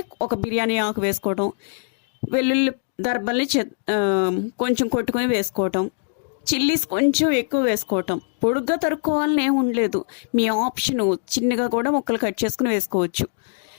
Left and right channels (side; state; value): right; silent; digital silence